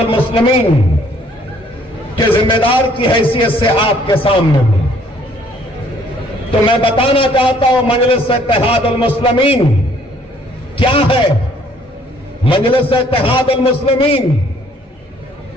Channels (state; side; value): normal; both; correlation 0.61